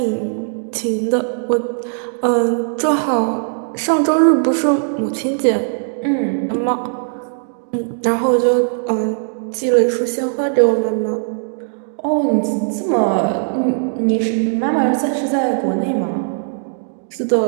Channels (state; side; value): silent; left; digital silence